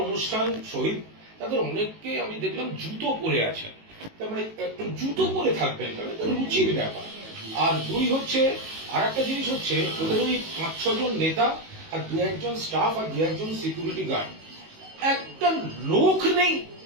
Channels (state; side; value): late; left; 19 ms